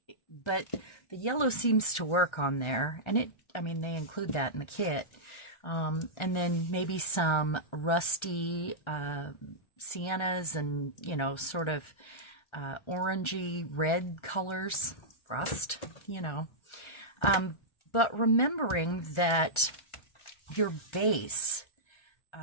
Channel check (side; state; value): right; late; 1.3 ms